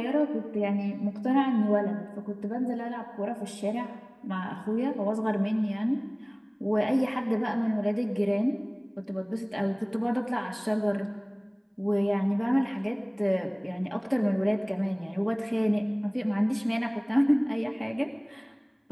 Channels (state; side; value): identical; both; correlation 1.00